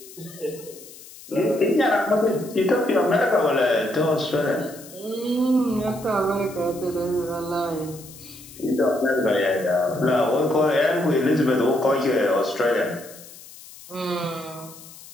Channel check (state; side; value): noise; left; hiss, 18 dB below the sound